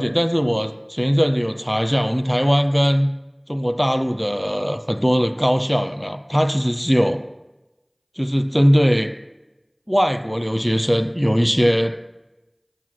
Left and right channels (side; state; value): both; identical; correlation 1.00